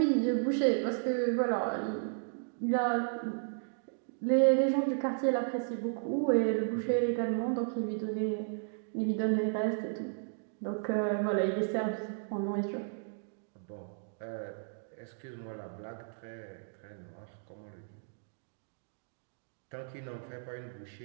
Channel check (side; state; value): left; silent; digital silence